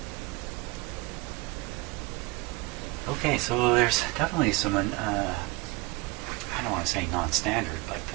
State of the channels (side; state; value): left; quieter; 23.9 dB